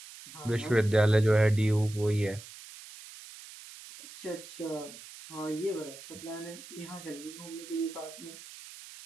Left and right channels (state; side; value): noise; right; hiss, 16 dB below the sound